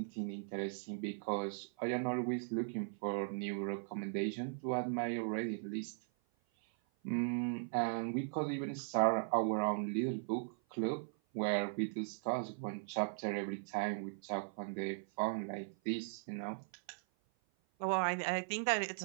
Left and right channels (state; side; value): silent; left; 52 dB below the other